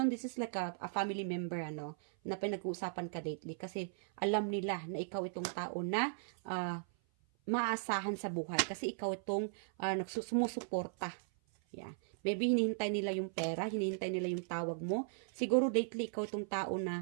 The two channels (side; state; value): left; silent; 53 dB below the other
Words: this is like a family member, na pinag-uusapan ka lately. Kasi alam nila na ikaw itong tao na maasahan sa buhay. Kasi ikaw itong sumusuporta. Yeah. Maybe hinihintay nila yung pera, hinihintay nila yung tawag mo. Siguro lately, ikaw itong tao